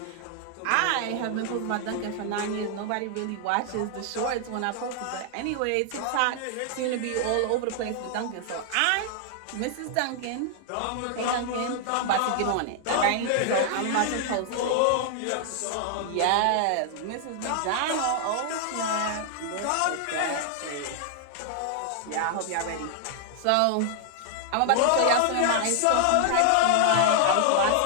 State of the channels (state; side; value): different; both; correlation 0.00